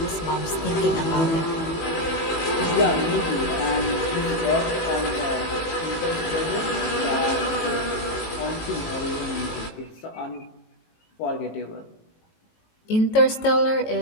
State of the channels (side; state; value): right; late; 18 ms